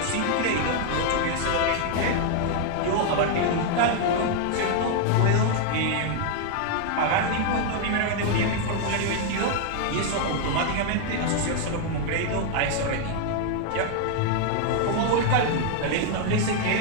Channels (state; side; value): different; both; correlation 0.00